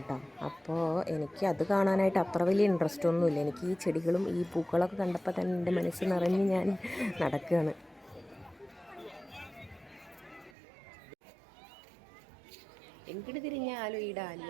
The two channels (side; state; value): left; drops out; at 10.5 s